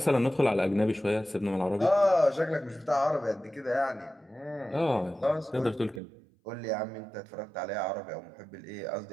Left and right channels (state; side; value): drops out; left; at 6.0 s